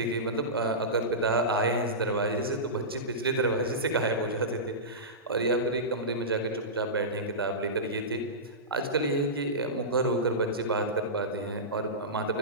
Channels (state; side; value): normal; both; correlation -0.18